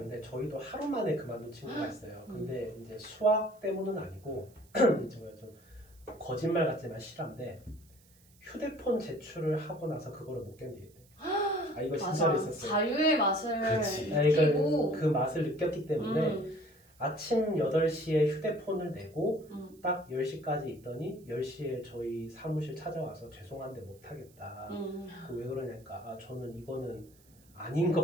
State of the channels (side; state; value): right; noise; hiss, 29 dB below the sound